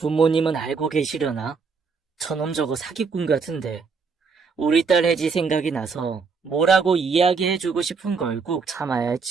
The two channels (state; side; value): quieter; left; 5.1 dB